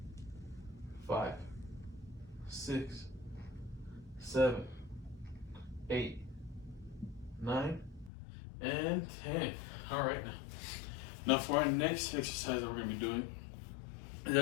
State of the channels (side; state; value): right; drops out; at 8.1 s